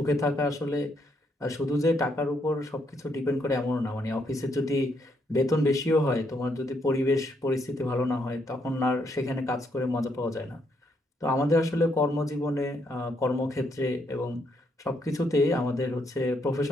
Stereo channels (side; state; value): both; normal; correlation 0.74